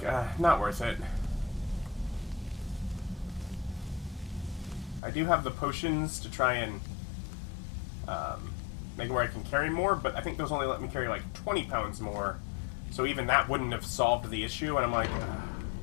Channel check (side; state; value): right; drops out; at 5.0 s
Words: not worth it. I do have the potions to try and make it where I can carry more, but I think those only let me carry like 20 pounds more. So even that wouldn't have solved the issue, and I'm like,